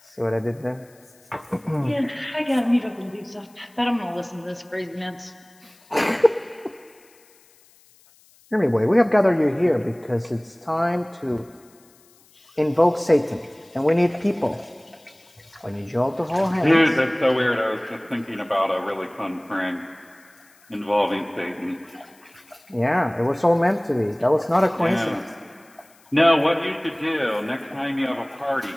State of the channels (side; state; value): left; noise; hiss, 29 dB below the sound